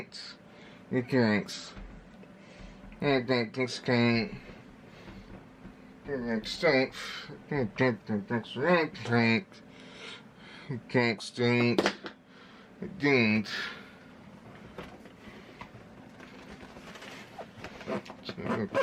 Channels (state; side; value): identical; both; correlation 1.00